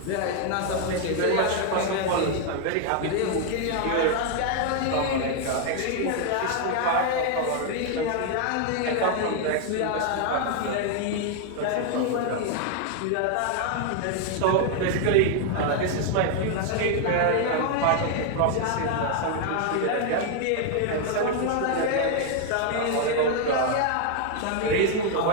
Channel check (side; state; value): both; different; correlation 0.00